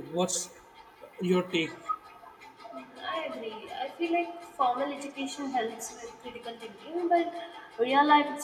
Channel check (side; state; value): both; identical; correlation 1.00